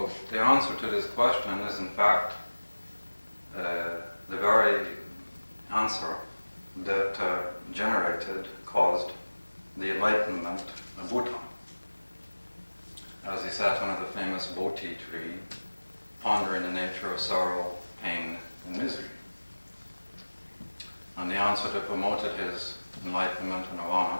the answer to this question is, in fact, the very answer that caused the enlightenment of Buddha. As he sat under the famous Bodhi tree, pondering the nature of sorrow, pain, and misery. And the answer that promoted his enlightenment and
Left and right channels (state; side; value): inverted; both; correlation -1.00